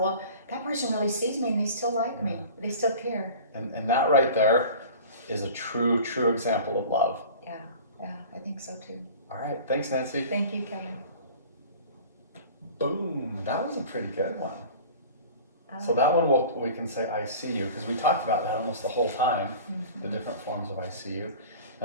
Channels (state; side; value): inverted; both; correlation -0.40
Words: that person really sees me and they still like me, they still care. And that right there is a true example of love. Yeah, I think so too. All right, thanks, Nancy. Thank you, Kevin. Boom, that was a pretty good one. So that one we can say I see you, because we talked about that almost the whole time, the different forms of I see you.